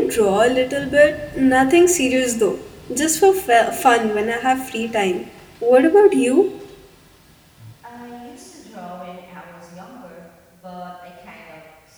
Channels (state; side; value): identical; both; correlation 1.00